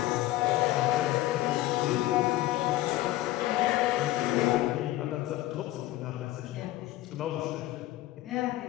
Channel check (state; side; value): quieter; right; 15.9 dB